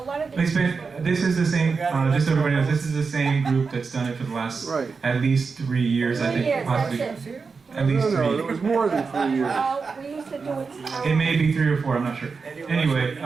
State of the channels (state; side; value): quieter; left; 4.9 dB